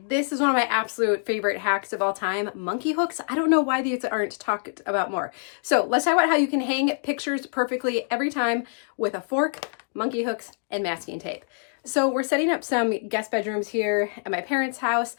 this is one of my absolute favorite hacks of all time, monkey hooks. I don't know why these aren't talked about more. So let's talk about how you can hang pictures perfectly every time with a fork, monkey hooks, and masking tape. So we're setting up some guest bedrooms here at my parents' house,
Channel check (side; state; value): right; silent; 58 dB below the other